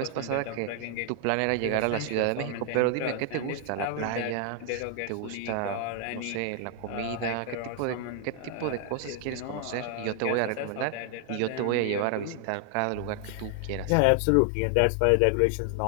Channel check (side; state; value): both; different; correlation 0.00